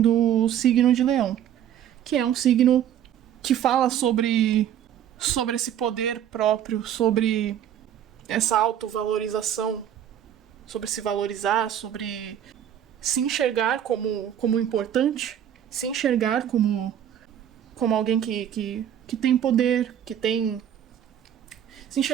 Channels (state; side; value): quieter; left; 10.1 dB